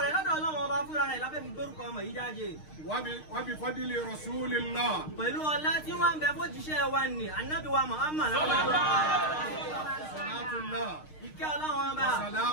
Wábi fọ́dílì Rasulillah. Pẹ̀lú ọlá tí wọ́n ń bẹ fójíṣẹ́ wa ní Ànábì wa Muhammad. Salatullah. Ìkẹ́ Ọlọ́run ọba.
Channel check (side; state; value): right; late; 6.5 ms